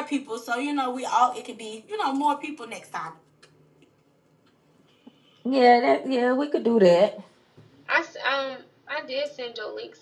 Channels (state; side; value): identical; both; correlation 1.00